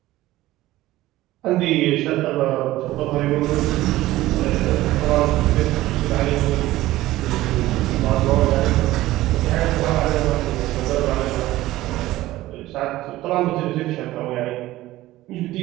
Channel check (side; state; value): left; quieter; 16.5 dB